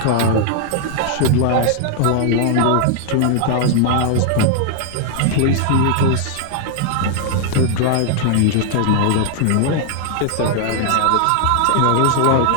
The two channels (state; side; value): different; both; correlation 0.00